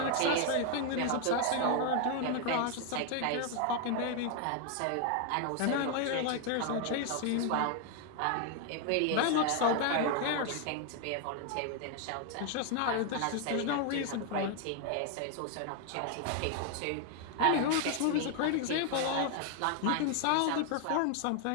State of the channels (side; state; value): both; different; correlation 0.00